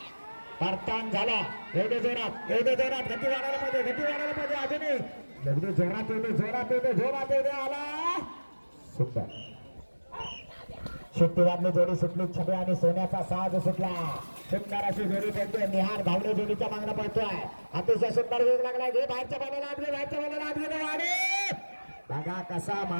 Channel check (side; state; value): both; inverted; correlation -1.00